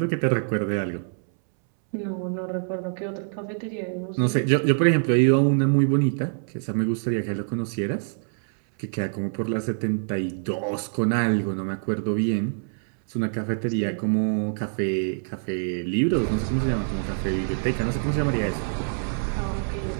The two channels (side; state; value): left; silent; 62 dB below the other